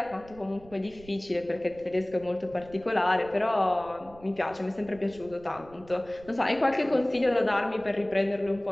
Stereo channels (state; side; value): noise; right; rumble, 22 dB below the sound